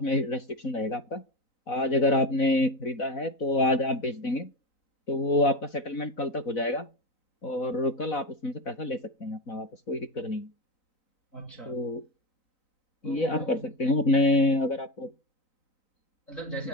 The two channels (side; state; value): right; late; 4.0 ms